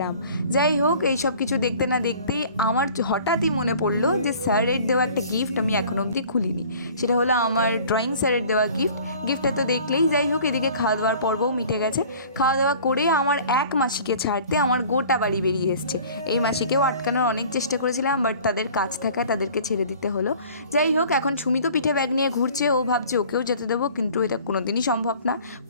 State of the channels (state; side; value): inverted; both; correlation -0.48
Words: আম। যাই হোক, এই সব কিছু দেখতে না দেখতেই আমার হঠাৎই মনে পড়লো যে স্যারের দেওয়া একটা গিফট আমি এখনও অবধি খুলিনি। সেটা হলো আমার ড্রয়িং স্যারের দেওয়া গিফটটা তো দেখলেই। যাই হোক, এদিকে খাওয়া দাওয়ার পর্বও মিটে গেছে। খাওয়া দাওয়া করে আমার এক মাসিকে ছাড়তে আমার গোটা বাড়ি বেরিয়ে এসছে। এই মাসিকেও আটকানোর অনেক চেষ্টা করেছিলাম, বাট তাদের কাজ থাকায় তাদেরকে ছেড়ে দিতে হলো। যাই হোক, এখন সুমি তো পিঠে ব্যাগ নিয়ে ঘুরছে। ও ভাবছে ওকেও যেতে দেবো, কিন্তু এটা কোনোদিনই সম্ভব না।